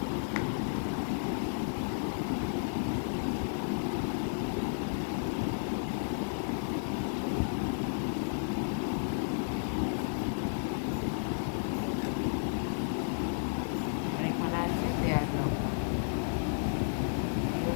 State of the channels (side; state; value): right; silent; digital silence